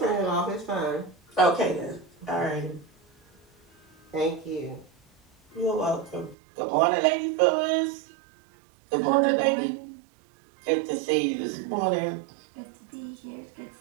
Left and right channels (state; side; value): drops out; left; at 6.4 s